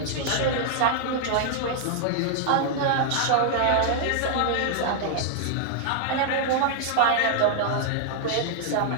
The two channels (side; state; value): both; different; correlation -0.01